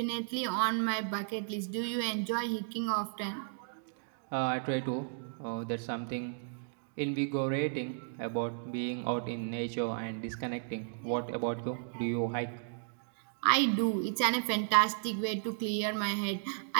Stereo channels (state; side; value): silent; left; digital silence